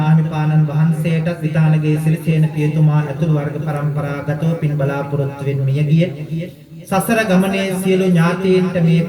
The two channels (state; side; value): identical; both; correlation 1.00